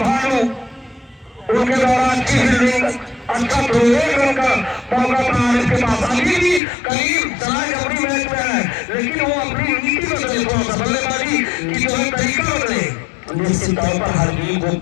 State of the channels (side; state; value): right; drops out; at 6.6 s